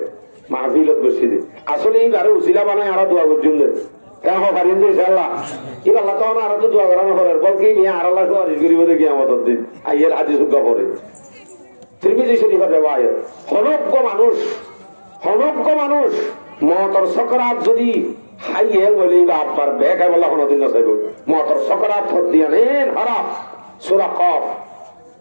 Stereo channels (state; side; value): inverted; both; correlation -1.00